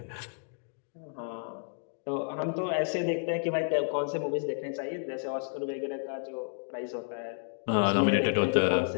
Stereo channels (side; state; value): right; silent; digital silence